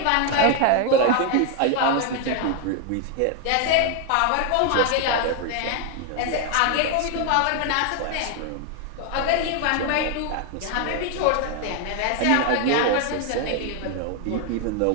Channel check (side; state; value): both; different; correlation 0.01